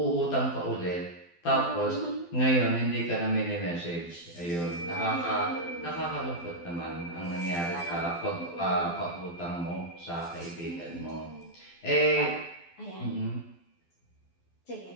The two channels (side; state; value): right; late; 12 ms